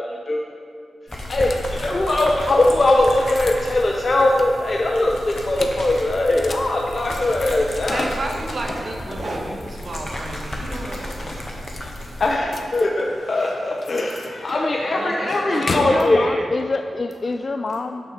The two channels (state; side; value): normal; both; correlation 0.93